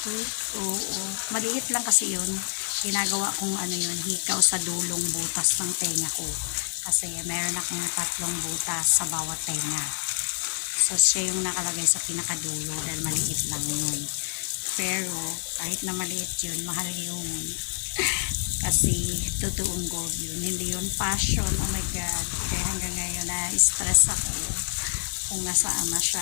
week. Oo. Maliit lang kasi yun. Ginagawa kong yun, hikaw sa dulong butas ng tenga ko. Kasi meron akong 3 butas sa bawat tenga. So, siya yung nakalagay sa pinakadulo dahil maliit lang yun. Pero, kahit na maliit yun, mahal yun. Kasi, totoong gold yun. Hindi yun fashion. Oh my God. Kaya hanggang ngayon, na-stress ako kung nasaan na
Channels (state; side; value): silent; right; 55 dB below the other